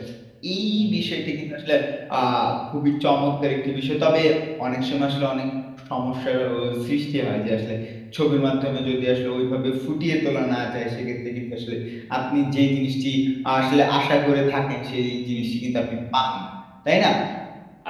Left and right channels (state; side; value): identical; both; correlation 1.00